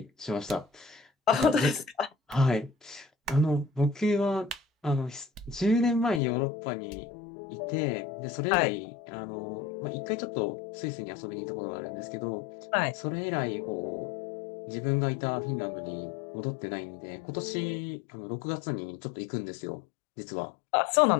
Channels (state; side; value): drops out; right; at 6.2 s